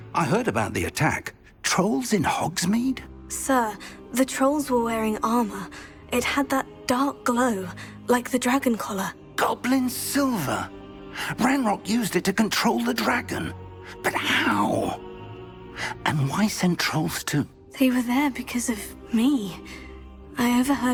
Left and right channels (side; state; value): both; identical; correlation 1.00